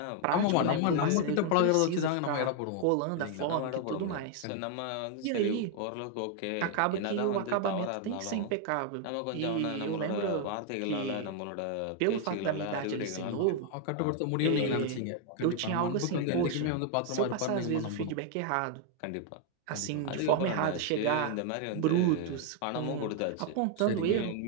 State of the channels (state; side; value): different; both; correlation 0.00